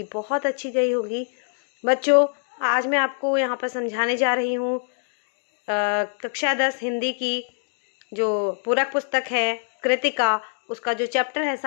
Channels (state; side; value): silent; right; 62 dB below the other